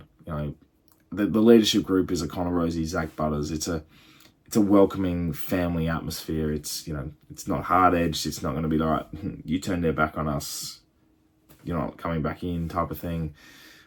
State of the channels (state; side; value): identical; both; correlation 1.00